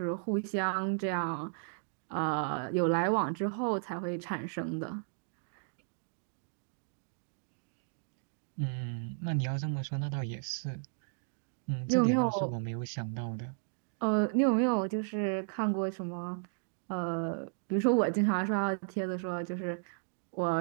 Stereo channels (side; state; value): left; silent; digital silence